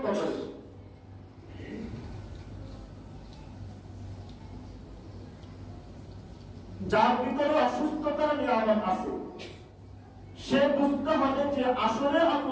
তত বেশি। যার ভিতরে অসুস্থতার নিয়ামত আছে সে বুঝতে হবে যে আসলে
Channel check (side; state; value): both; identical; correlation 1.00